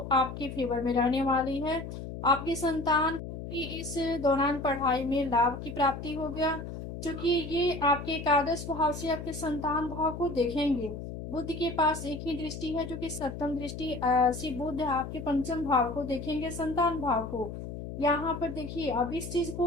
आपके फेवर में रहने वाली है। आपकी संतान को भी इस दौरान पढ़ाई में लाभ की प्राप्ति हो गया, क्योंकि ये आपके एकादश भाव से आपके संतान भाव को देखेंगे। बुध के पास एक ही दृष्टि है जो कि सप्तम दृष्टि से बुध आपके पंचम भाव को देखेंगे, संतान भाव को। यहाँ पर देखिए, अब इस चीज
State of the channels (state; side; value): noise; left; hum, 8 dB below the sound